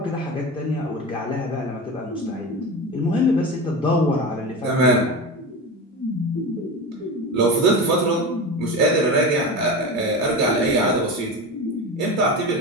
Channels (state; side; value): normal; both; correlation 0.26